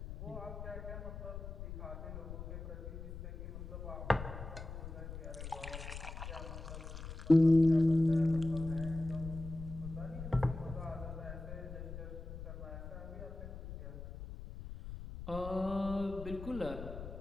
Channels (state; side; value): noise; left; rumble, 9 dB below the sound